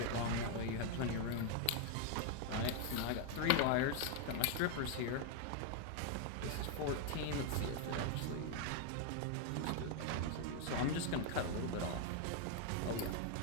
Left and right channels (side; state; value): both; different; correlation 0.01